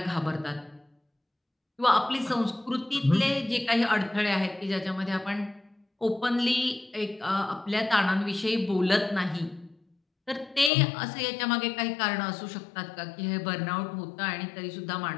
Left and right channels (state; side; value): drops out; right; at 10.7 s